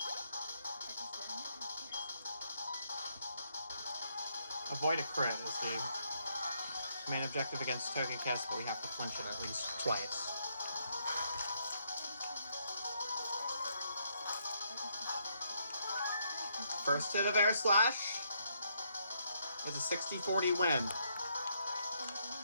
Avoid a crit is the main objective against Togekiss, but we have to flinch it at least twice. First hit of Air Slash is a 60-40 win.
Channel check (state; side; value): inverted; both; correlation -0.74